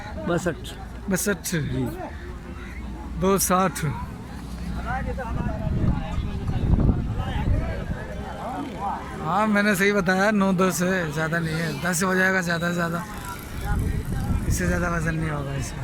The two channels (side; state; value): both; identical; correlation 1.00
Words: 62 260। हाँ मैंने सही बताया, 9-10 है, ज़्यादा नहीं है। 10 हो जाएगा ज़्यादा से ज़्यादा, इससे ज़्यादा वज़न नहीं होगा इसमें।